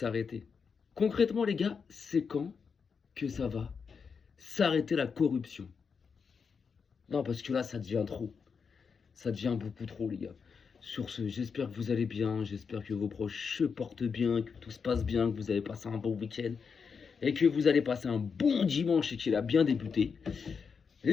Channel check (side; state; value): right; quieter; 5.8 dB